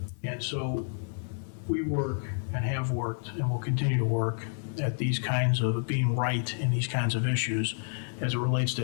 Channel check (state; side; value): silent; right; digital silence